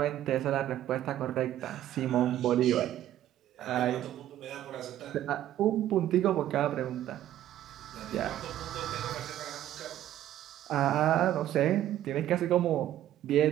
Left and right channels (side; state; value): left; quieter; 12.6 dB